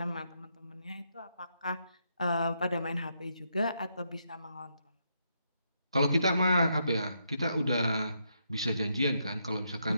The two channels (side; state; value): both; inverted; correlation -0.79